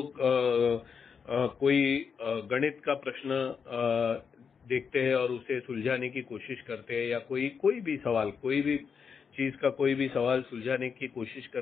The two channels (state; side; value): quieter; right; 6.3 dB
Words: कोई गणित का प्रश्न देखते हैं और उसे सुलझाने की कोशिश करते हैं, या कोई भी सवाल, कोई भी चीज का कोई भी सवाल सुलझाने की कोशिश